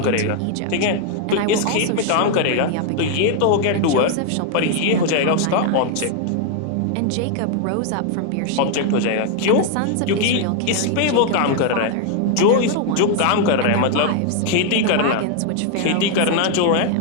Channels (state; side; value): different; both; correlation 0.00